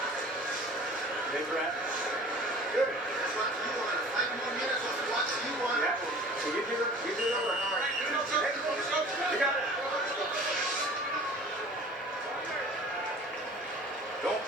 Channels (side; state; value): both; normal; correlation 0.45